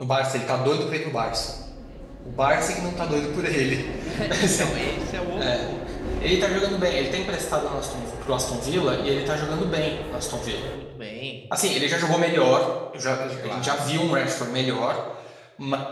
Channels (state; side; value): identical; both; correlation 1.00